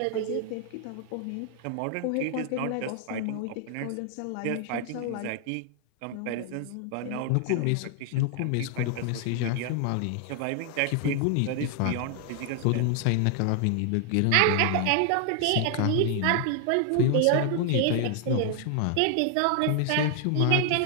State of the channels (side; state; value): both; different; correlation 0.00